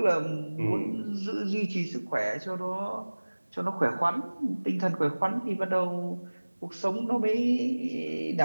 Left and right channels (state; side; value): inverted; both; correlation -1.00